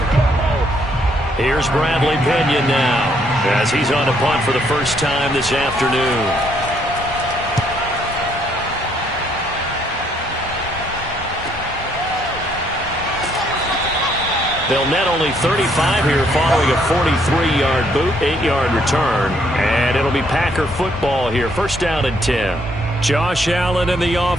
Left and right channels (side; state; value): both; normal; correlation 0.69